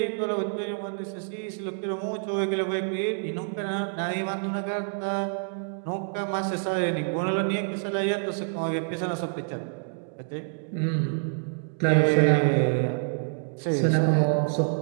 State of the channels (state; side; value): silent; left; digital silence